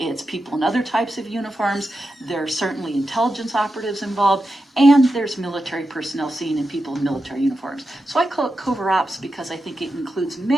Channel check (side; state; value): both; normal; correlation 0.90